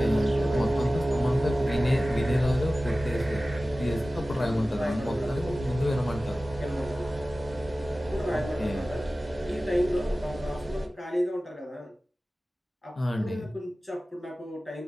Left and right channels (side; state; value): both; normal; correlation 0.96